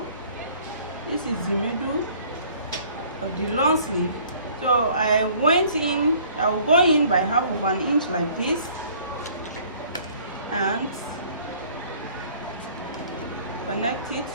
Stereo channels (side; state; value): both; inverted; correlation -0.55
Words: This is the middle of the long sleeve. So I went in, I will go in by half of an inch like this, and connect it